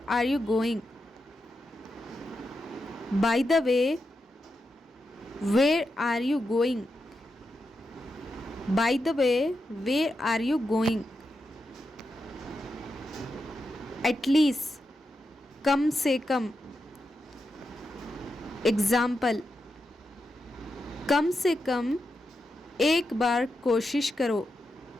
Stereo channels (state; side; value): normal; both; correlation 0.87